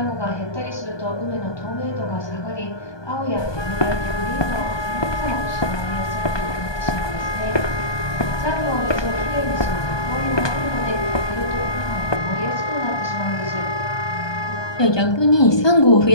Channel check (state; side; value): late; right; 1.2 ms